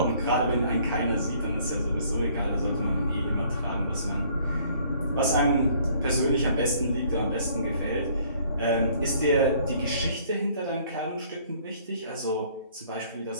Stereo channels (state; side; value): inverted; both; correlation -0.59